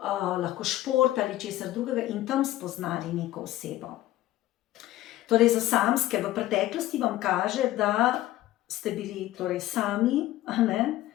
lahko šport ali česar drugega in tam spoznali neko osebo. Torej, za samske v preteklosti vam kaže, da ste bili torej sami,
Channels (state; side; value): quieter; right; 15.1 dB